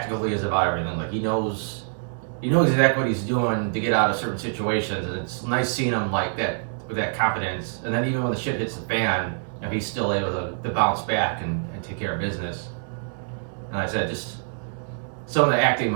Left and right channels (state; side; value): silent; left; digital silence